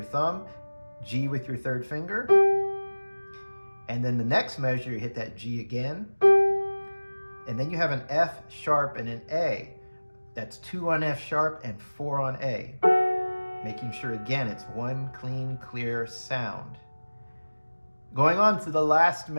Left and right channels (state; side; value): inverted; both; correlation -1.00